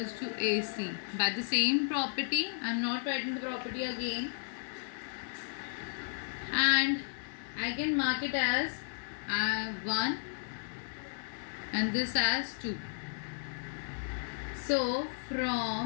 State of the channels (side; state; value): right; silent; digital silence